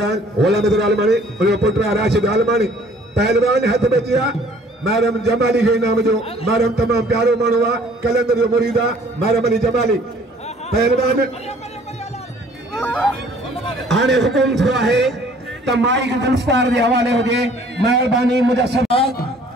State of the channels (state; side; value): normal; both; correlation 0.56